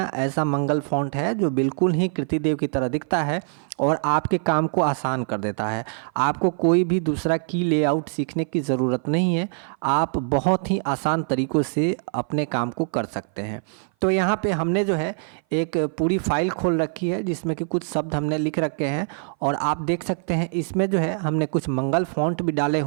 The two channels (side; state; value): left; silent; 57 dB below the other